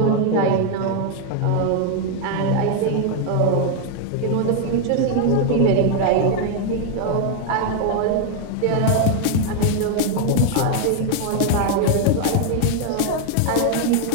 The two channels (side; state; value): both; different; correlation 0.00